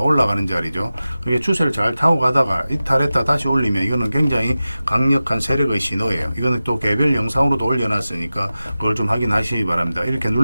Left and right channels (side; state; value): both; inverted; correlation -0.95